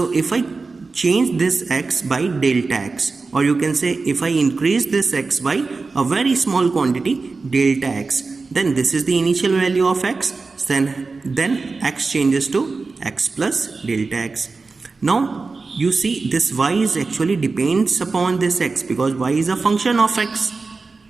if I change this x by delta x, or you can say if I increase this x by a very small quantity, delta x, then this is the initial value of x, then x changes to x plus delta x. Now you see this y is actually depends upon this x, because y is a function of x.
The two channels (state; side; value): quieter; left; 4.1 dB